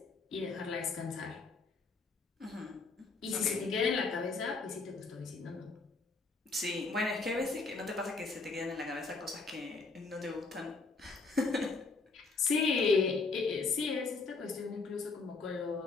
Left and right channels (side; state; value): right; quieter; 4.0 dB